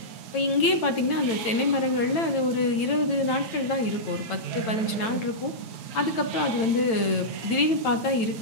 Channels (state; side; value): late; right; 9.0 ms